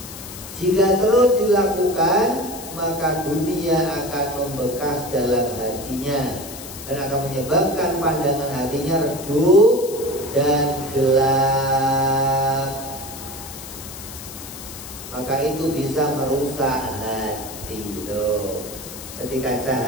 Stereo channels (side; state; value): left; noise; hiss, 13 dB below the sound